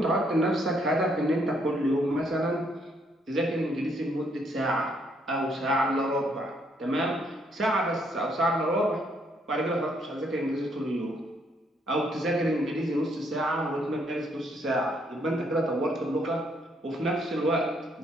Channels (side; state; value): both; normal; correlation 0.71